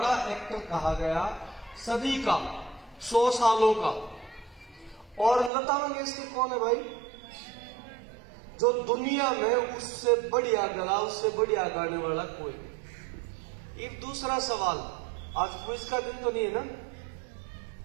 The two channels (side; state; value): left; drops out; at 5.5 s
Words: एक्टर कहा गया, सदी का, 100 सालों का। और लता मंगेशकर कौन है भाई? जो दुनिया में उससे बढ़िया गला, उससे बढ़िया गाने वाला कोई नहीं। एक दूसरा सवाल, आज क्विज का दिन तो नहीं है ना?